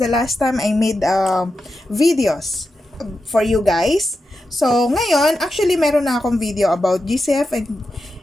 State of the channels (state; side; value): normal; both; correlation 0.89